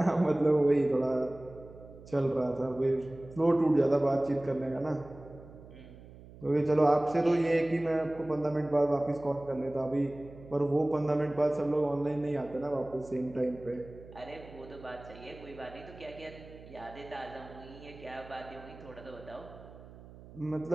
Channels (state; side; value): noise; right; hum, 19 dB below the sound